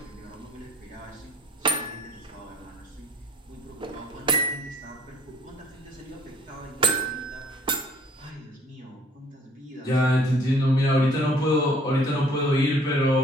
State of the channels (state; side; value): normal; both; correlation 0.58